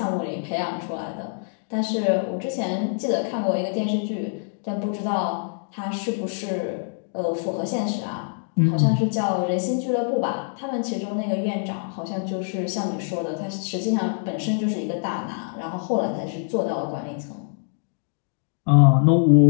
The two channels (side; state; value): right; silent; digital silence